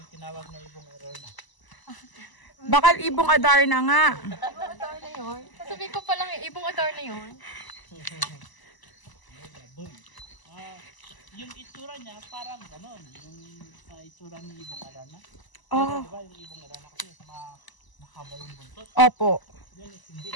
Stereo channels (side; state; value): right; late; 1.0 ms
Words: tinawag na ibong error na. Bakal ibong adar na nga. Ibong adar na yun. Sasabihin ko palang ibong adar na yun. Yung itsura niya parang ganon. Yung itsura ni ibong arana. Ah, Diba yung ibong arana kasi mahaba yung buntot. opo. Yan is hindi.